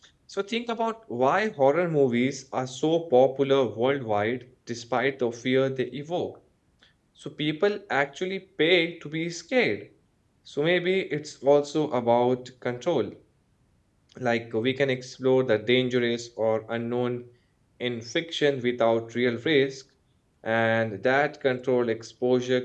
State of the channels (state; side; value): identical; both; correlation 1.00